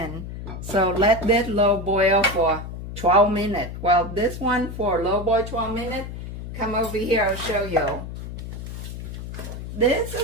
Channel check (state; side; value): noise; left; hum, 9 dB below the sound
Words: So let that low boil for 12 minutes. Well, this one for low boil 12 minutes, come over here, I'll show you. This